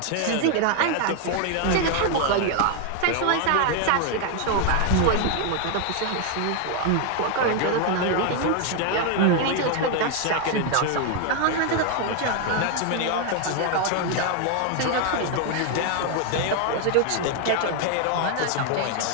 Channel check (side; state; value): both; different; correlation 0.01